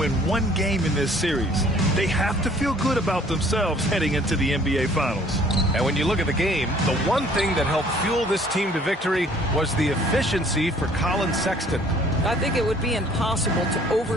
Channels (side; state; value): both; normal; correlation 0.56